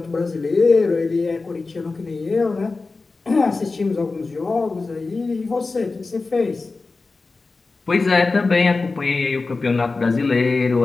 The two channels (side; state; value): right; quieter; 3.8 dB